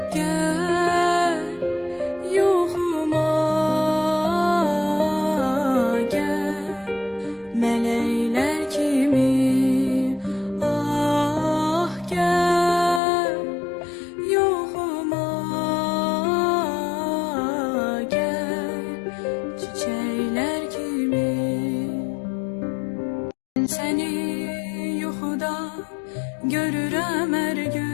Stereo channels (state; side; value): drops out; right; at 13.0 s